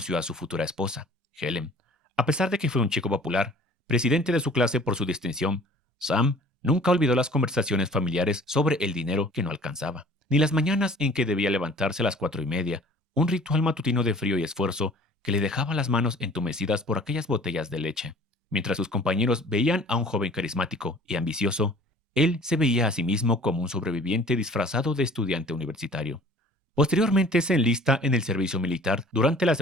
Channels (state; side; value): normal; both; correlation 0.49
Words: a su futura esposa, Helen. A pesar de que fue un chico popular, presidente de su clase por su distinción, Sam nunca olvidó las conversaciones familiares sobre el dinero que no alcanzaba, ni las mañanas en que debía levantarse a las 4:30, un ritual matutino de frío y esfuerzo que le dejaba las manos entumecidas por aquellas botellas de leche. Mientras sus compañeros veían a un joven carismático y ambicioso, él se veía a sí mismo como un sobreviviente disfrazado de estudiante universitario. Posteriormente se enlista en el servicio militar durante la